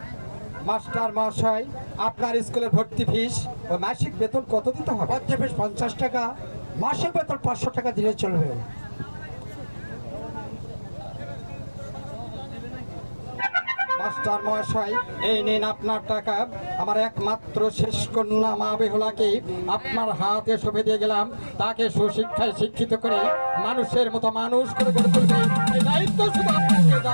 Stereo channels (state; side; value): inverted; both; correlation -1.00